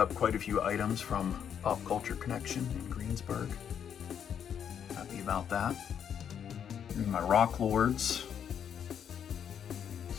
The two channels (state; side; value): quieter; right; 8.4 dB